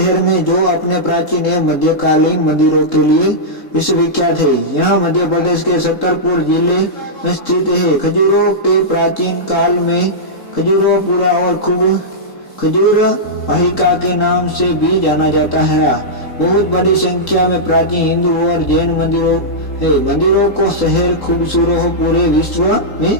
में जो अपने प्राचीन एवं मध्यकालीन मंदिरों के लिए विश्वविख्यात है। यह मध्य प्रदेश के छतरपुर जिले में स्थित है। खजुराहो के प्राचीन काल में खजुराहोपुरा और खूब खजूर वाहिका के नाम से भी जाना जाता है। बहुत बड़ी संख्या में प्राचीन हिंदू और जैन मंदिरों है। मंदिरों को शहर खजुराहो पूरे विश्व में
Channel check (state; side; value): late; right; 3.8 ms